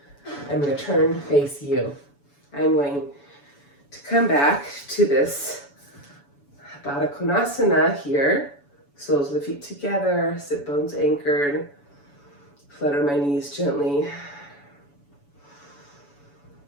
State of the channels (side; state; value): right; late; 7.0 ms